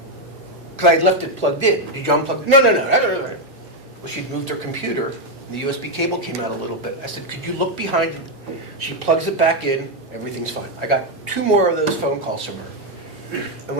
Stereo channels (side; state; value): both; normal; correlation 0.03